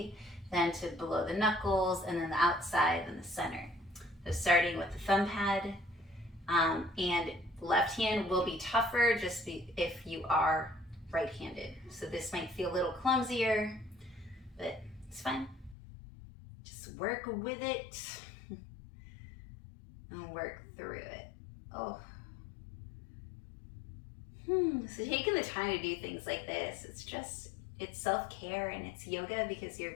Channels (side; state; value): right; drops out; at 15.8 s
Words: then to below the knuckles, and then the outside, and the center. So starting with the thumb pad, and left hand will be tougher just if you are right-handed. So this might feel a little clumsier, but it's fine. Just work with it and work through it. Oh. So taking the time to do things like this, it's self-care and it's yoga because you're